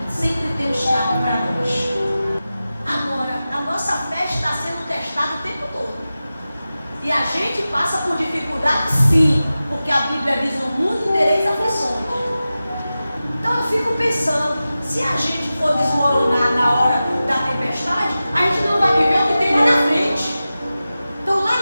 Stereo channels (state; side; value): inverted; both; correlation -0.94